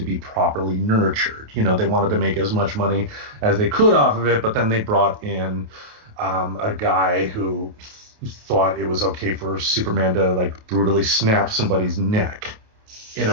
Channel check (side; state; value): left; late; 28 ms